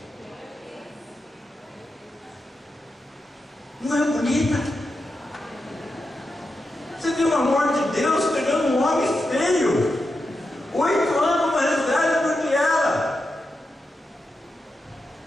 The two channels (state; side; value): normal; both; correlation 0.88